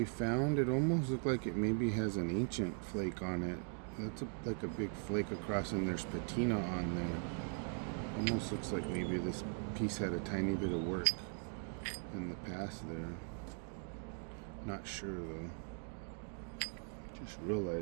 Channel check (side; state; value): left; silent; 51 dB below the other